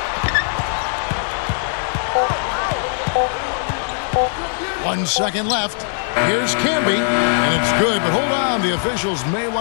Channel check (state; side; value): silent; right; digital silence